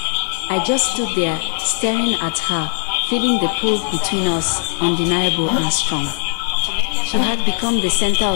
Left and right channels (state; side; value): silent; right; digital silence